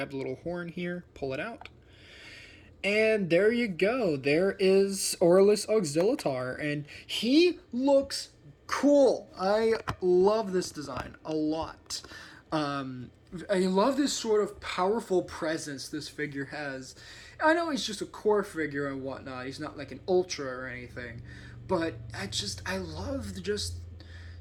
the little horn here, pull it out. And there you go. There is Aurelus Auxilitar, and he looks cool. I love this design a lot. I love this sort of powerful presence this figure has. I know he's just a core figure and whatnot. He's not like an ultra or anything, but I love just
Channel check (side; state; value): both; identical; correlation 1.00